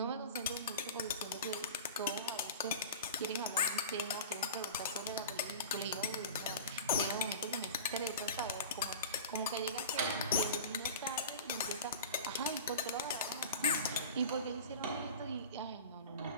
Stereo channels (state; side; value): inverted; both; correlation -0.34